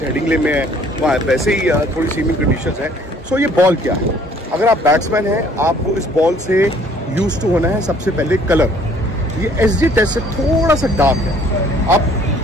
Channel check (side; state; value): both; normal; correlation 0.58